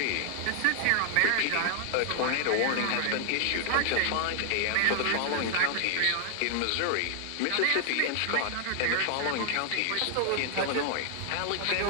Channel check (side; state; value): both; different; correlation 0.00